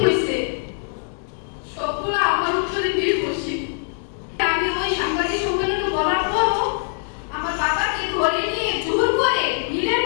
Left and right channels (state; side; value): silent; right; digital silence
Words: হয়েছে সবগুলো আমার উপরে নির্ভরশীল। আমি ওই সাংবাদিক সম্মেলনে বলার পরও আমার বাবাকে ঘরে নিয়ে জোর করে মিলের